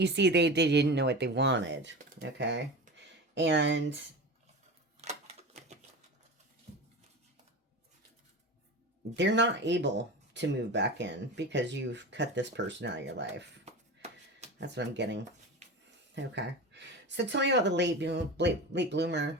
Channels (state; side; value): normal; both; correlation 0.29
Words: see, they didn't know what they wanted. Okay. And they're not able to move back in because you've cut this person out of your life. That's what I'm getting. Okay. So tell me about the late bloomer.